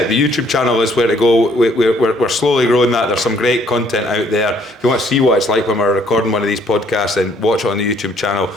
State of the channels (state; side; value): normal; both; correlation 0.64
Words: The YouTube channel is where to go. We're slowly growing that. There's some great content out there. If you want to see what it's like when we're recording one of these podcasts, then watch it on the YouTube channel.